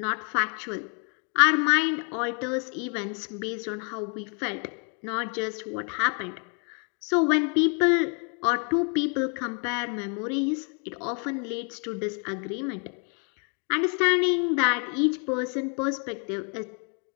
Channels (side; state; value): right; quieter; 39.9 dB